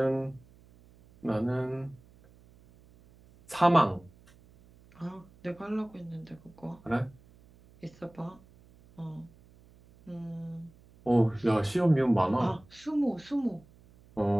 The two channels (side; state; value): right; noise; hum, 27 dB below the sound